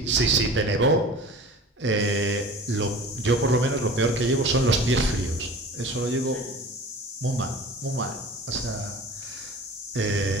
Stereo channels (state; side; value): normal; both; correlation 0.39